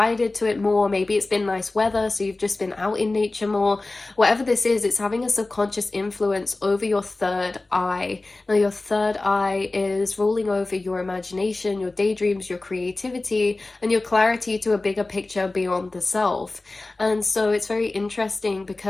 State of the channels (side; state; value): right; quieter; 3.1 dB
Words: to it more. Maybe it's been nice weather, so you've just been out in nature more. Whatever this is, it's having a subconscious influence over your third eye. Now, your third eye is ruling over your imagination, your daydreams, your creativity, and your clarity to a bigger picture beyond the self. And so it's very interesting